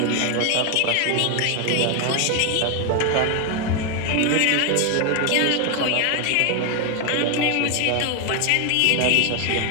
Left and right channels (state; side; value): different; both; correlation 0.01